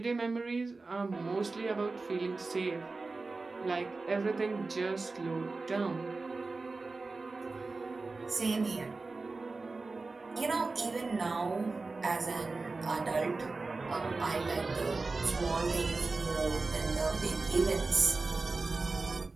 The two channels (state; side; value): quieter; left; 3.7 dB